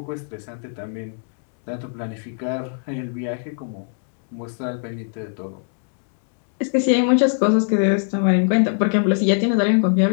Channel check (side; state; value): right; silent; digital silence